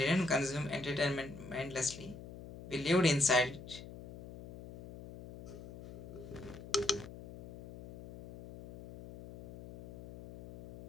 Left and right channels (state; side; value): noise; left; hum, 14 dB below the sound